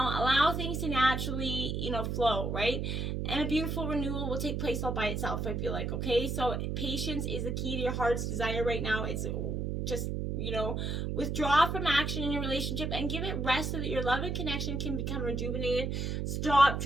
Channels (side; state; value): right; noise; hum, 1 dB below the sound